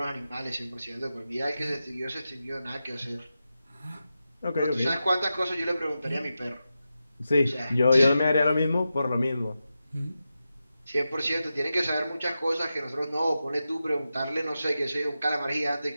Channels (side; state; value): both; inverted; correlation -0.90